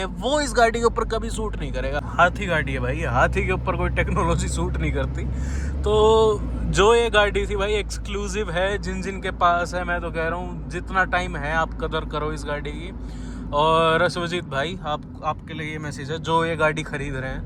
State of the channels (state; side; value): identical; both; correlation 1.00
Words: वो इस गाड़ी के ऊपर कभी सूट नहीं करेगा। हाथी गाड़ी है भाई, हाथी के ऊपर कोई टेक्नोलॉजी सूट नहीं करती। तो जो ये गाड़ी थी भाई एक्सक्लूसिव है, जिन के पास है, मैं तो कह रहा हूँ जितना टाइम है आप कदर करो इस गाड़ी की। और सुजीत भाई, आपके लिए ये मैसेज है, जो ये गाड़ी खरीद रहे